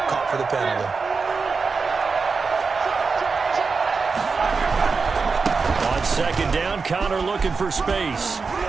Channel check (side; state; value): left; quieter; 4.7 dB